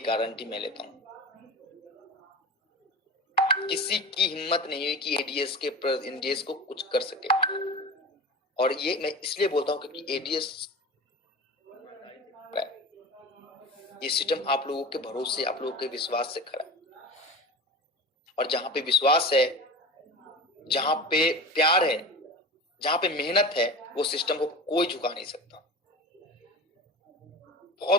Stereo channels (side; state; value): both; normal; correlation 0.32